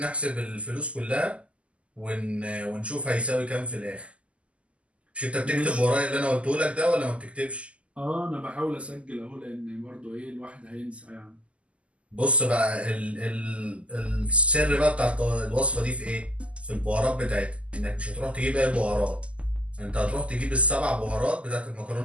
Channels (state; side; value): late; left; 0.059 ms